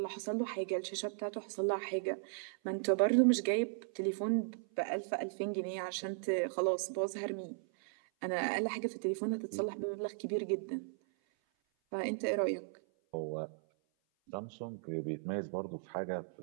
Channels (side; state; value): left; silent; 53 dB below the other